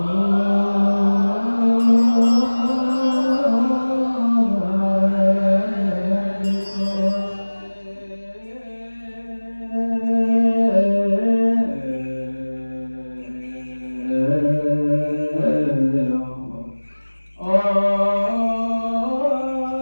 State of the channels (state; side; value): inverted; both; correlation -1.00